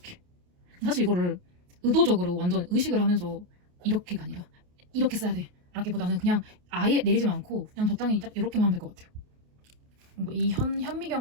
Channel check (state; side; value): late; left; 28 ms